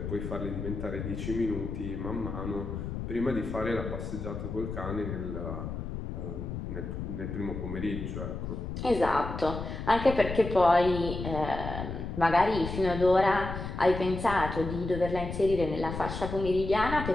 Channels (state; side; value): noise; left; rumble, 6 dB below the sound